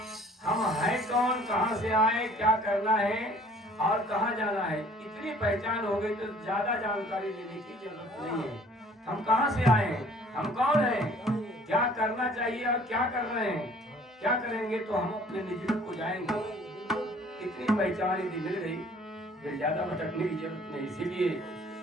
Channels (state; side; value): normal; both; correlation 0.54